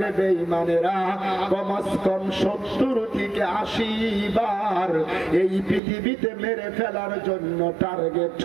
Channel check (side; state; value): left; drops out; at 5.8 s